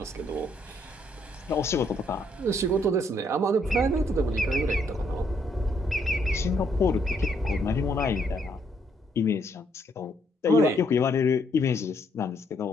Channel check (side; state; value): both; normal; correlation 0.71